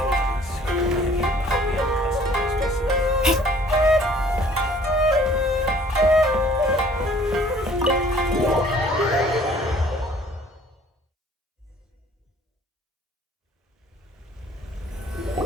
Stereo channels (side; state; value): both; normal; correlation 0.55